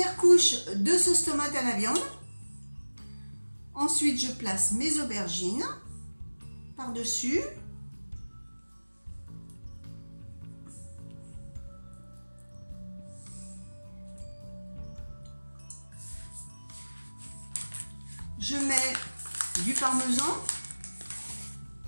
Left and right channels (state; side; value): inverted; both; correlation -1.00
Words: couche de sauce tomate à la viande. Ensuite, je place mes aubergines par-dessus. Je mets du parmesan.